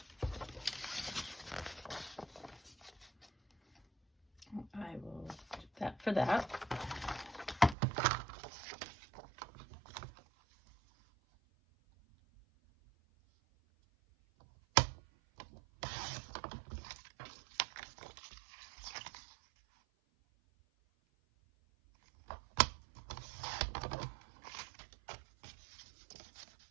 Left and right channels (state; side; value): drops out; left; at 7.8 s